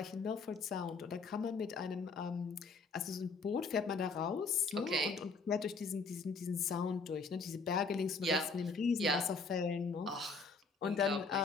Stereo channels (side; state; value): right; quieter; 4.4 dB